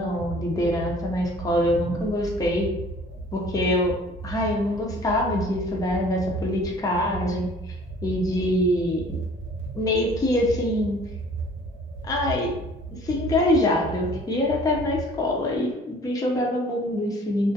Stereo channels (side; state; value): both; normal; correlation 0.51